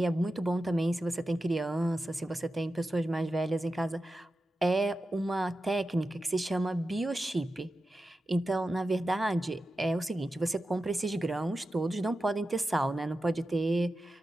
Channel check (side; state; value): both; normal; correlation 0.92